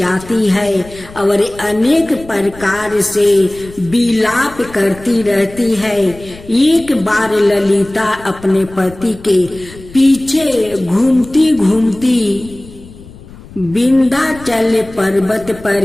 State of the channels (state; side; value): noise; left; rumble, 19 dB below the sound